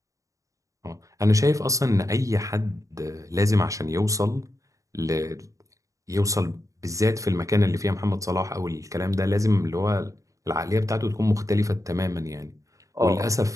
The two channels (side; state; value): left; late; 0.16 ms